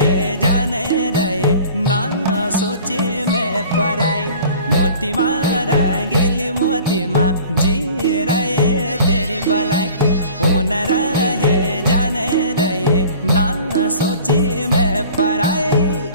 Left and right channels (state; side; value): inverted; both; correlation -0.46